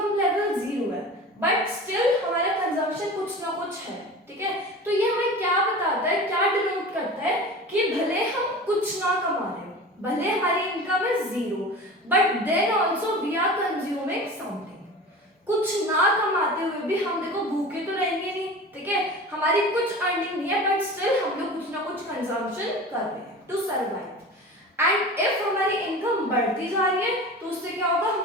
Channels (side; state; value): both; normal; correlation 0.35